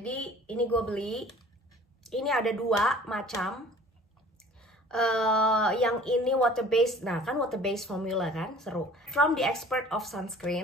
ini gue beli. Ini ada 2 macam. Yang ini water based. Nah kan water based formula kan, seru. From the expert of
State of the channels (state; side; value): normal; both; correlation 0.49